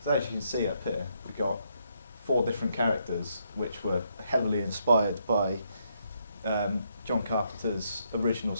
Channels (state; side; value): inverted; both; correlation -0.75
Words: So as you can see up here, we've got 4 different characters which were heavily inspired by John Carpenter's original